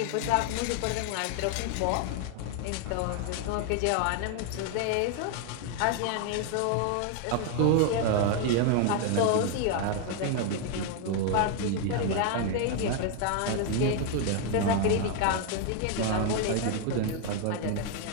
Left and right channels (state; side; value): different; both; correlation 0.01